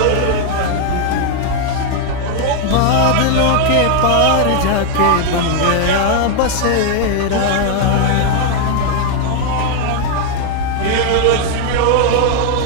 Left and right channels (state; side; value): different; both; correlation 0.00